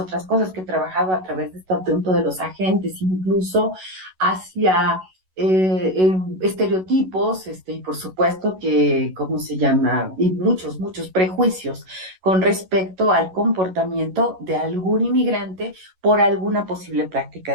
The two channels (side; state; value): left; late; 11 ms